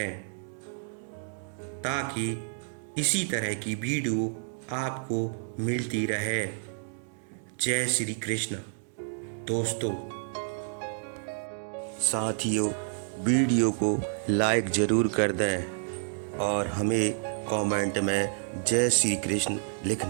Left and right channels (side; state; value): left; silent; digital silence